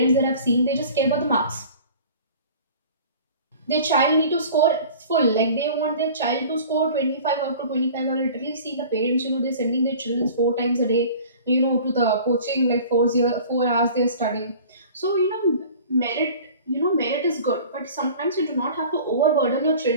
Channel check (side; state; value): both; inverted; correlation -0.43